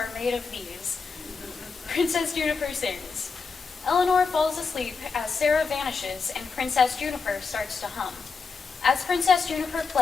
Made of These. Princess Juniper sings. Eleanor falls asleep as Sarah vanishes and Princess Juniper starts to hum. As Princess Juniper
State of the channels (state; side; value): quieter; right; 4.9 dB